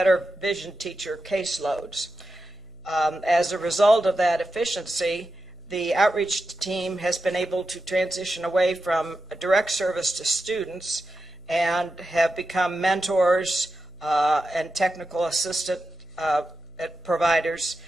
vision teacher caseloads. As a result of that efficiency, the outreach team has been able to transition away from a direct service to students and have become mentors and technical assistant providers.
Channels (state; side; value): noise; left; hum, 27 dB below the sound